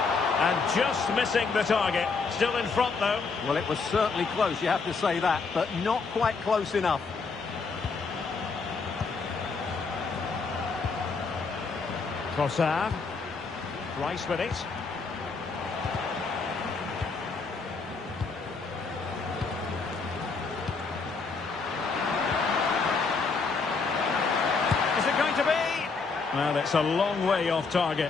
And just missing the target. still in front, though. Well, it was certainly close, you have to say that, but not quite close enough. Trossard. Rice with it. Is it going to be? Well, it's a long way off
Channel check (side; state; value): right; quieter; 4.6 dB